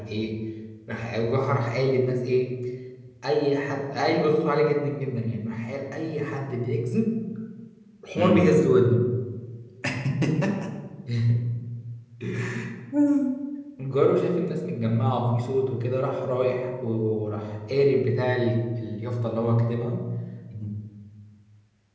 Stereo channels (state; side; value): identical; both; correlation 1.00